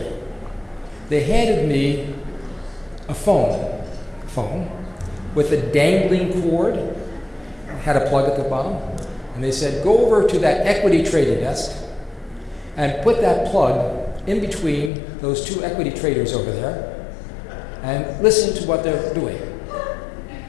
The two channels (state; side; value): drops out; right; at 14.9 s